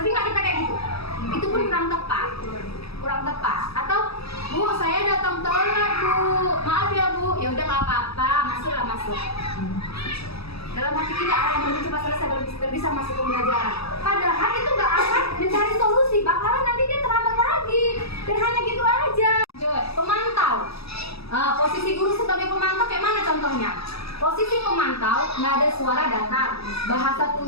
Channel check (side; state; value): right; late; 0.77 ms